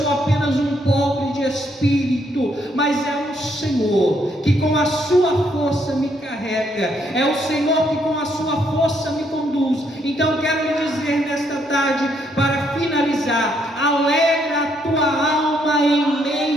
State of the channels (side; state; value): both; normal; correlation 0.72